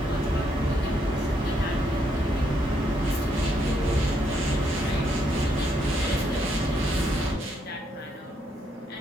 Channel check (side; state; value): both; normal; correlation 0.75